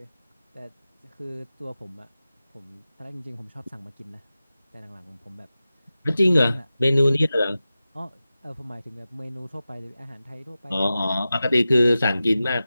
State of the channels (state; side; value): inverted; both; correlation -0.94